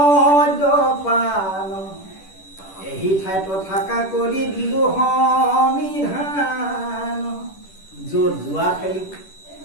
এই ঠাইত থাকা কৰি দিলো সমিধান। য'ত যোৱা খেলিব,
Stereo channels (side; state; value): right; late; 10 ms